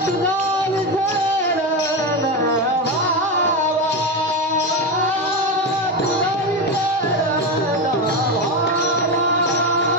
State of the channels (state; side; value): normal; both; correlation 0.15